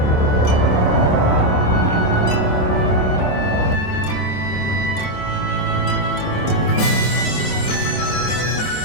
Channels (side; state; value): right; late; 27 ms